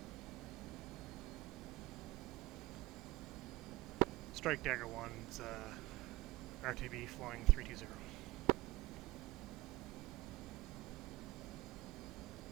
Strike Dagger1's RTB flying 320.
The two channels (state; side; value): quieter; left; 19.1 dB